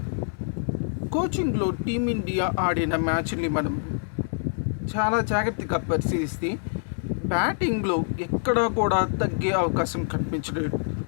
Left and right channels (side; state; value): right; silent; digital silence